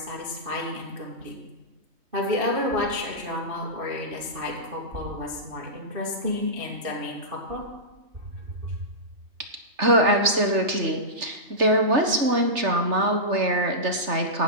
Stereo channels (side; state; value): left; late; 3.3 ms